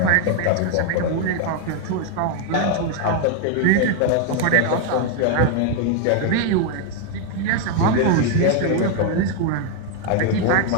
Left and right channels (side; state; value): both; different; correlation 0.01